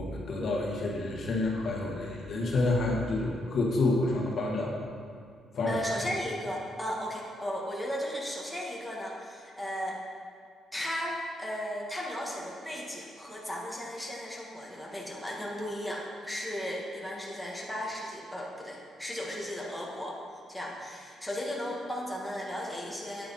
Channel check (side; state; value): both; normal; correlation 0.79